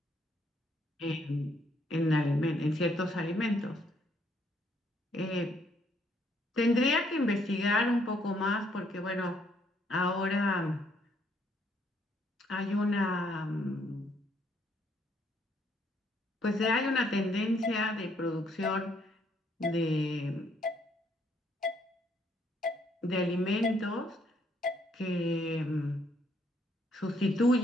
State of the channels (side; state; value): both; normal; correlation 0.69